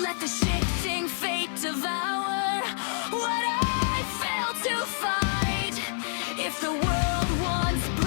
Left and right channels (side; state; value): right; silent; digital silence